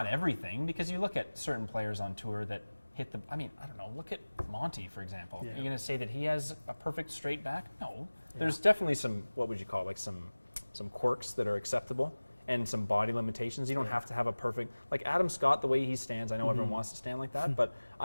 everything, because you look at certain players on tour that hit I don't know, look at Monty, for example. Yeah. You're going to say that he has a perfect straight back? No. There's definitely some, what would you call it, like some quirks that are acceptable. And some body limitations. You don't have to have a perfect, like Adam Scott, the way he stands, I know everyone wants to stand like that, but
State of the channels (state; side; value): inverted; both; correlation -1.00